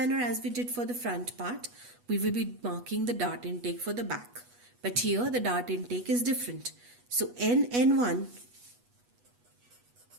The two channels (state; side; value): late; left; 8.2 ms